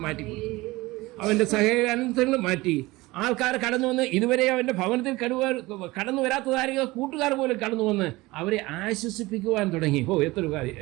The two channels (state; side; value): quieter; left; 20.7 dB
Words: മാറ്റി, അവൻ്റെ സകല അനന്തരങ്ങളും മാറ്റി. ആൾക്കാർ കടന്നു വന്ന് ഇതുവരെ അവൻ്റെ ഭവനത്തിൽ കടന്നു വരാത്തതായിരിക്കും കൂട്ടുകാർ പോലും കടന്നു വന്ന് അവരെ ആശ്വസിപ്പിക്കുവാൻ തുടങ്ങി. എത്രയൊരു കാര്യം,